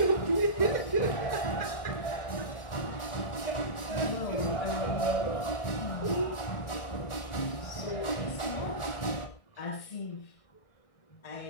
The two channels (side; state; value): right; late; 1.6 ms